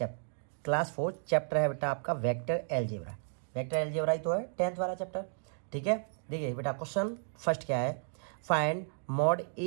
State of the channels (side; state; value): left; silent; digital silence